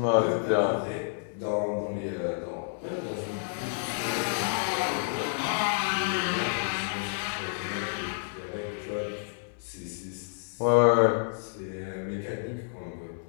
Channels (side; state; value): right; silent; digital silence